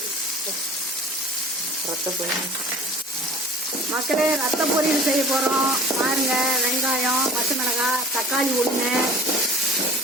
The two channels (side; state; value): both; normal; correlation 0.43